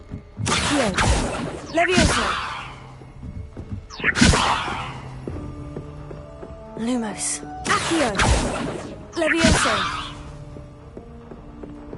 Levioso. Lumos. Accio. Levioso.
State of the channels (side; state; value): both; identical; correlation 1.00